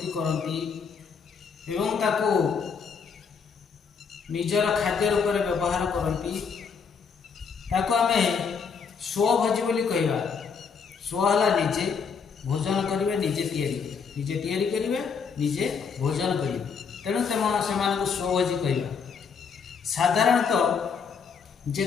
करती एवं ताको निजर खाद्य रूप में व्यवहार करती ताको आमे स्वभोजी बोली कहवा। स्व है निजे भोजन करेंगे, निजे तैयारी करेंगे, निजे भोजन करेंगे, तेणु से स्वभोजी कहवा। साधारणतः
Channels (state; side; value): quieter; right; 5.9 dB